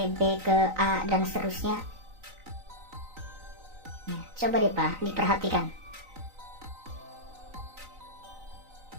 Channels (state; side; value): late; left; 3.9 ms